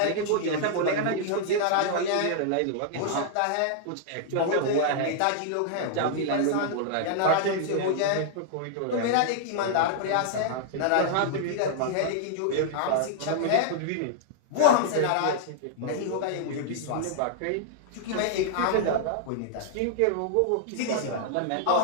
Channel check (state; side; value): different; both; correlation -0.01